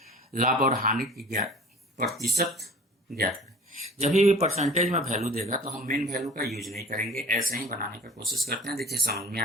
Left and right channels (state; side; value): normal; both; correlation 0.43